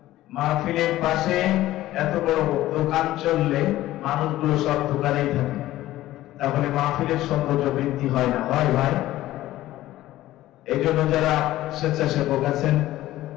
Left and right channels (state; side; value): quieter; right; 15.3 dB